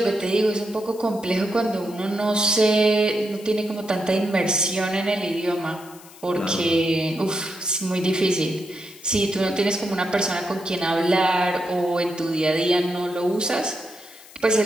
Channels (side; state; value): left; noise; hiss, 21 dB below the sound